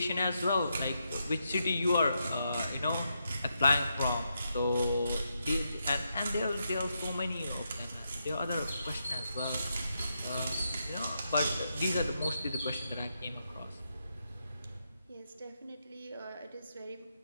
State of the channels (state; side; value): inverted; both; correlation -0.83